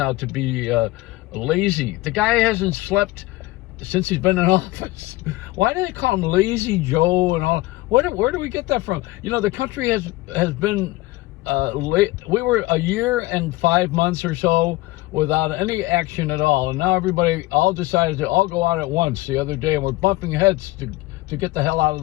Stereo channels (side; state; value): right; quieter; 19.5 dB